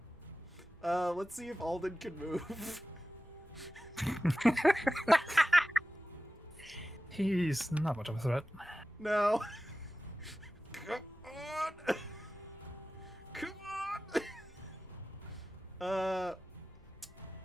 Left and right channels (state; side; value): normal; both; correlation 0.95